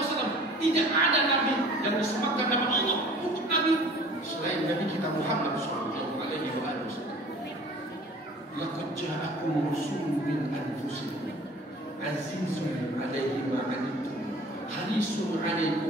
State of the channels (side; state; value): both; normal; correlation 0.47